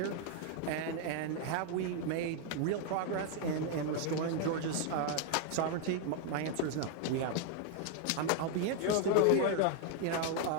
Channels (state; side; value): different; both; correlation 0.00